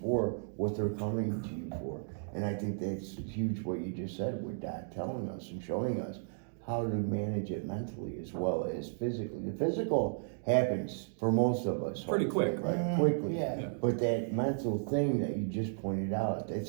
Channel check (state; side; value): silent; left; digital silence